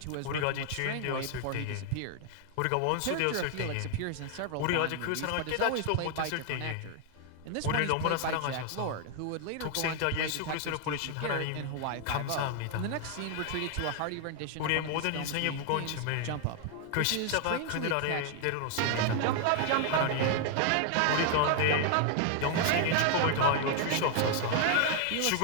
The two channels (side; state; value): both; different; correlation 0.00